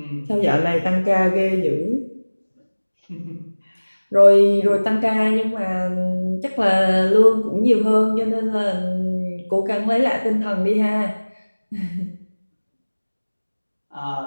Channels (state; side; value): inverted; both; correlation -1.00